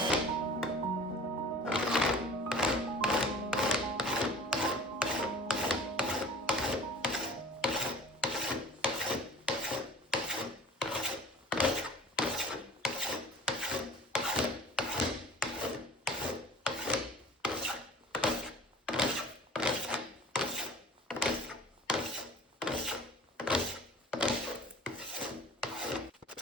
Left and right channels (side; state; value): both; normal; correlation 0.44